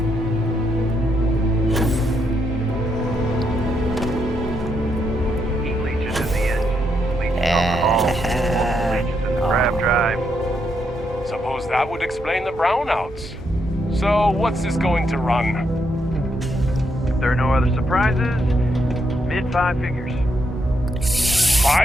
Heat leeches in the engine. Leeches on the hull. Leeches in the grab drive. Suppose that would explain the brownouts. So, what's this going to run? If there are no other surprises, mid 5 figures.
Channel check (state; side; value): normal; both; correlation 0.78